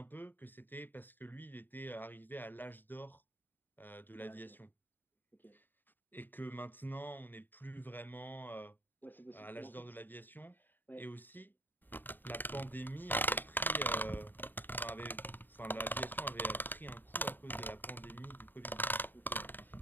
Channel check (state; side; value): late; right; 0.092 ms